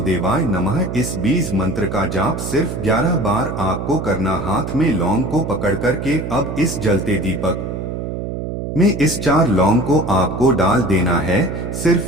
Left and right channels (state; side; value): noise; right; hum, 5 dB below the sound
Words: नमः। इस बीज मंत्र का जाप सिर्फ 11 बार आपको करना। हाथ में लौंग को पकड़ करके अब इस जलते दीपक में इस 4 लौंग को आपको डाल देना है।